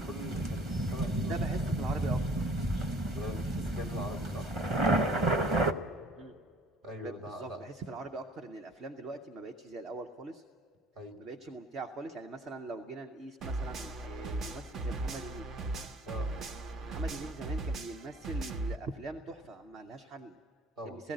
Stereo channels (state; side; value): normal; both; correlation 0.52